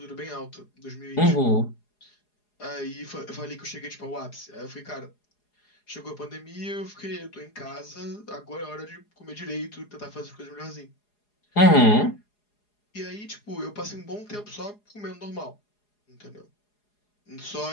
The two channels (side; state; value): right; late; 4.8 ms